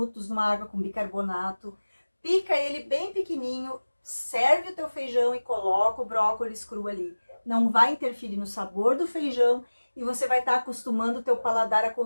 numa água com bicarbonato, pica ele bem pequenininho, serve o teu feijão e coloca o brócolis cru ali. Não vai interferir no sabor do feijão e você vai estar acostumando o teu paladar a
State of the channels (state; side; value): inverted; both; correlation -1.00